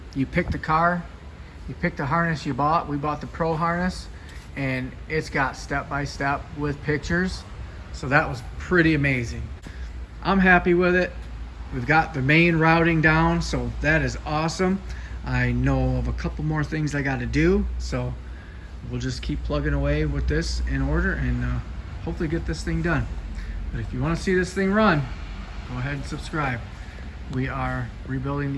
you pick the car, you pick the harness you bought. We bought the Pro harness, and it's got step-by-step with pictures. So that was pretty amazing. I'm happy with it. We've got the main routing down, so that is awesome. I know of a couple more things I got to do, so we'll just keep plugging away with this in order, and hopefully get this thing done. But if you want to see this thing run, go ahead and subscribe. We are rebuilding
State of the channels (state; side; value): identical; both; correlation 1.00